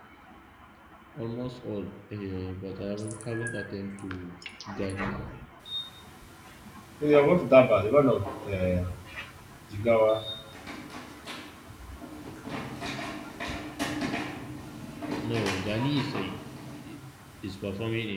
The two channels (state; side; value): identical; both; correlation 1.00